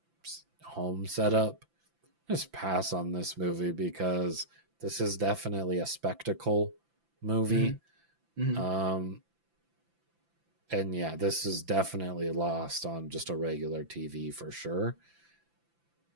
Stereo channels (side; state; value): left; late; 5.9 ms